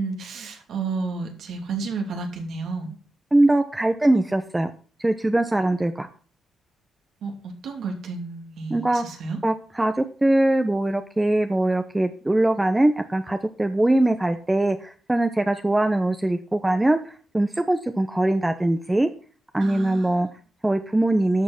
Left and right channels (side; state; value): both; normal; correlation 0.97